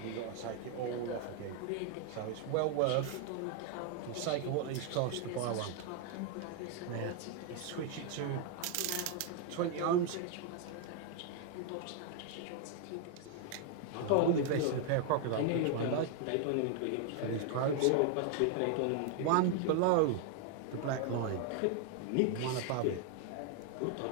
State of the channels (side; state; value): both; different; correlation 0.00